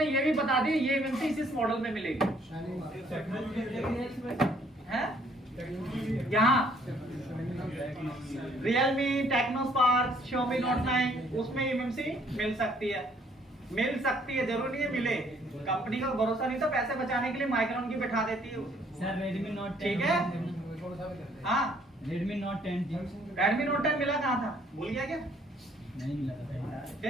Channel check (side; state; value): both; normal; correlation 0.63